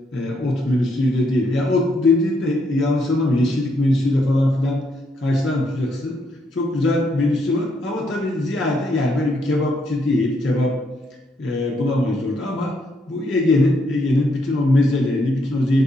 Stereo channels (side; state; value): both; normal; correlation 0.74